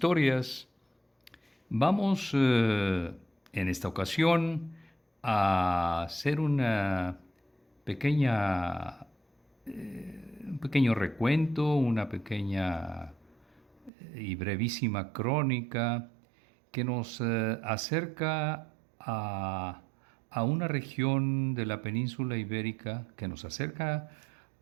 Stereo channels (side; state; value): left; drops out; at 13.9 s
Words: Vamos en esta ocasión a hacer pequeña, un pequeño recuento, una pequeña y brevísima crónica que nos acerca a una región de la península ibérica, que nos acerca